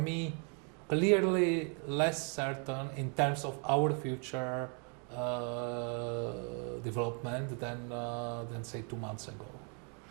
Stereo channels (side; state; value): left; quieter; 38.9 dB